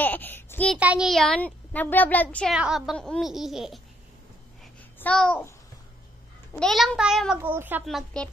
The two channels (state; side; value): normal; both; correlation 0.71